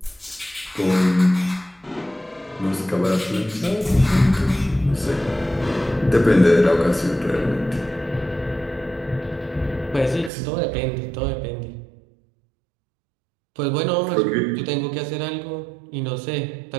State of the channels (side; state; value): left; drops out; at 10.3 s